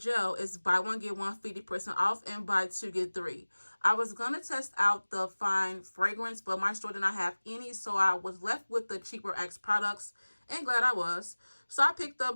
is buy 1 get 1 50% off and buy 2 get 3. I was gonna test out the fine fragrance, but my store did not have any, so I was left with the cheaper Axe products, and glad I was. So I picked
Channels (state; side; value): inverted; both; correlation -1.00